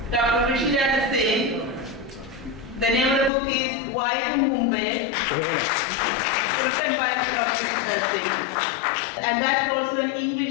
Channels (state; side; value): drops out; right; at 3.3 s